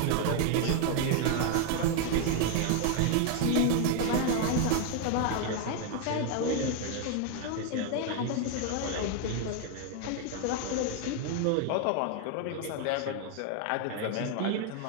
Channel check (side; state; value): both; different; correlation 0.01